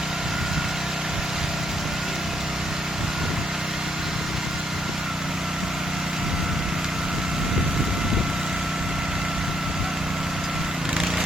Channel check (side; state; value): both; normal; correlation 0.74